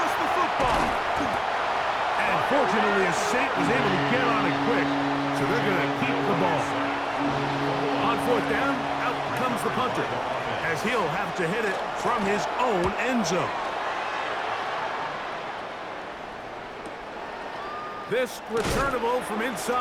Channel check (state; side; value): identical; both; correlation 1.00